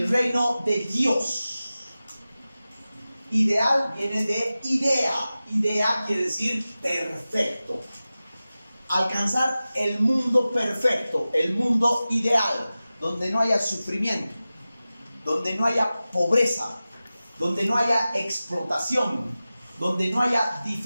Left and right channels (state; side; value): inverted; both; correlation -0.96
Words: reino de Dios. Ideal viene de idea. Idea quiere decir perfecto. Alcanzar el mundo perfecto, el mundo ideal, donde no haya sufrimiento, donde no haya pobreza, donde no haya explotación, donde no haya